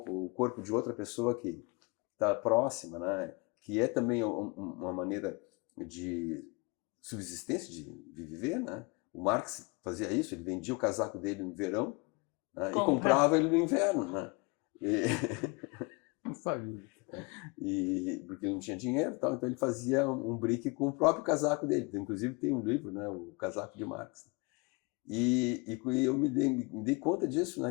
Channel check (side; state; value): right; quieter; 28.7 dB